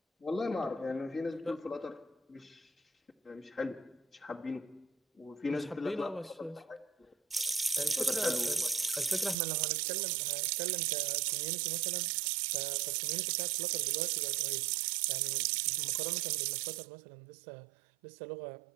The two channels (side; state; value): left; drops out; at 9.3 s